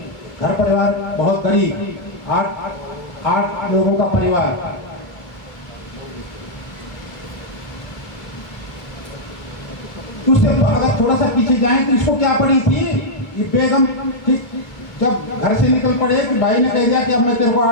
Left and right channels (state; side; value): late; right; 2.3 ms